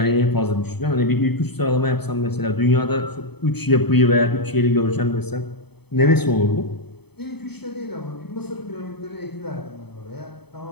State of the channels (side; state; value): right; late; 0.98 ms